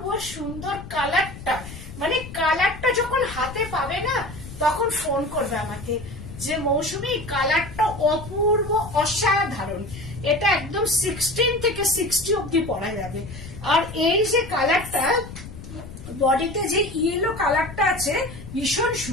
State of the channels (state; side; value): noise; left; rumble, 13 dB below the sound